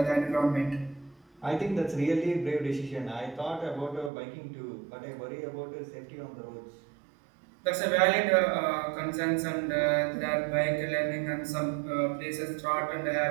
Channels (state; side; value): drops out; left; at 4.1 s